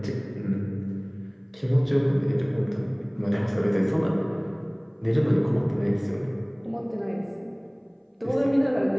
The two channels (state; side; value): identical; both; correlation 1.00